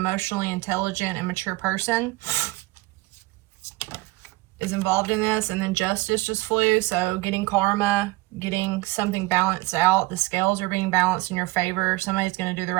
intelligent and mature person is involved in this. And then Justice just flew, so getting karma, getting something balanced out. The scales are being balanced in your favor. Somebody's going to do the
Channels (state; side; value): quieter; left; 21.2 dB